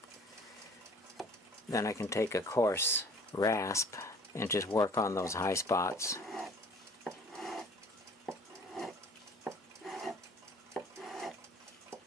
Then I can take a coarse rasp and just work on those high spots.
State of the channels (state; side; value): normal; both; correlation 0.51